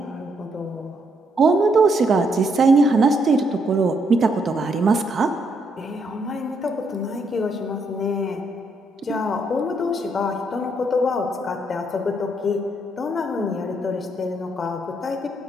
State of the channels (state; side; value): normal; both; correlation 0.75